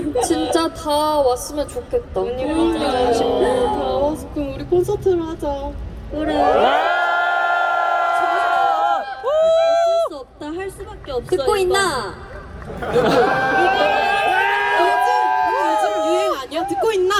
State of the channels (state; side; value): identical; both; correlation 1.00